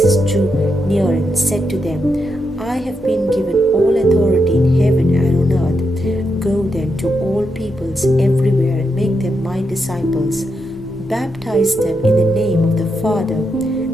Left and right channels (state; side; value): normal; both; correlation 0.83